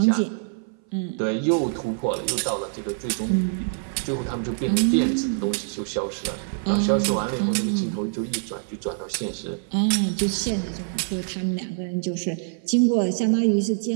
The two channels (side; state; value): left; silent; 58 dB below the other